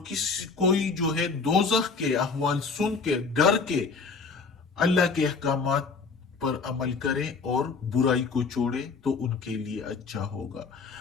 कोई जो है दोजख के अहवाल सुन के डर के अल्लाह के अहकामात पर अमल करें और बुराई को छोड़े तो उनके लिए अच्छा होगा।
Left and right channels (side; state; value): right; quieter; 4.7 dB